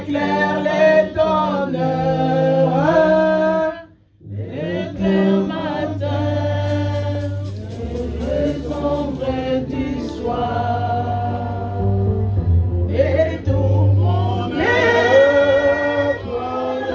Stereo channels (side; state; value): both; identical; correlation 1.00